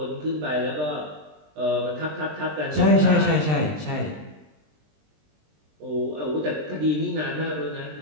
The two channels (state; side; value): late; left; 20 ms